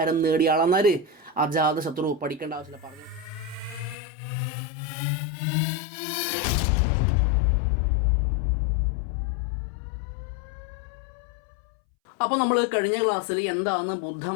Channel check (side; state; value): right; drops out; at 4.0 s